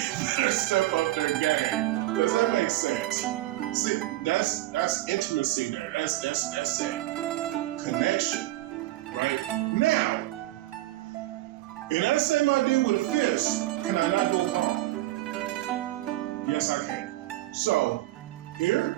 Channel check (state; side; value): quieter; left; 16.6 dB